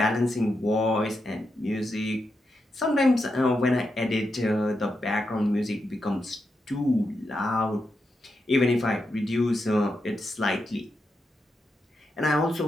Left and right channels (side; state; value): both; normal; correlation 0.85